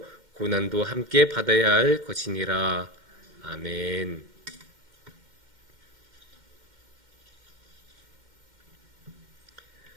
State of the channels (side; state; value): left; late; 2.1 ms